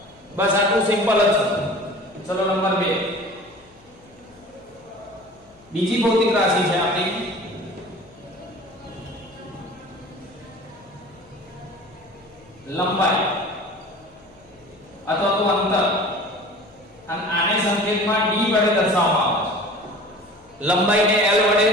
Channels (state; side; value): noise; left; hum, 28 dB below the sound